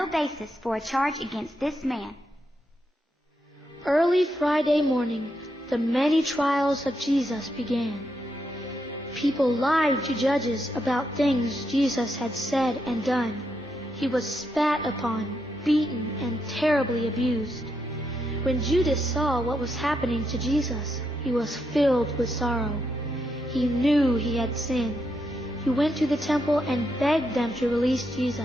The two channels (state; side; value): normal; both; correlation 0.81